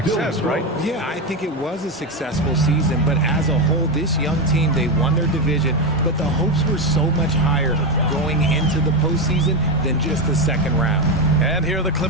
right? Yeah, I think it was a successful season, but as a whole, this young team, they won their division, but the hopes were so much higher going into the postseason than just the second round. And here are the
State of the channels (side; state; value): both; normal; correlation 0.11